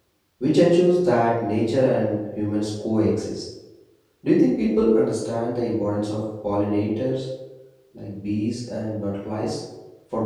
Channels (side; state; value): both; identical; correlation 1.00